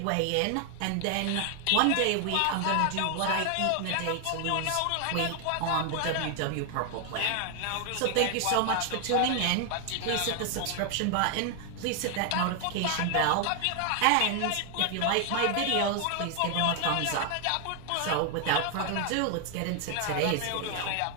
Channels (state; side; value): different; both; correlation 0.00